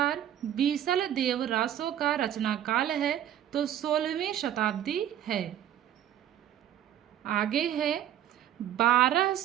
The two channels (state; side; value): quieter; left; 11.1 dB